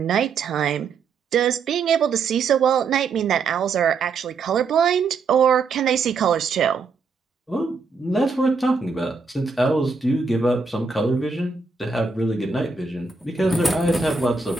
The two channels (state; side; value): quieter; left; 4.7 dB